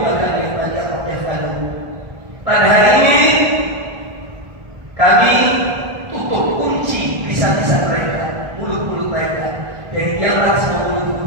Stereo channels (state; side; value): late; left; 1.4 ms